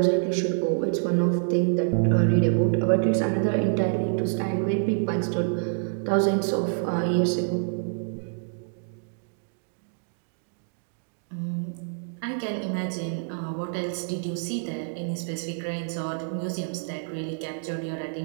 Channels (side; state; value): left; silent; digital silence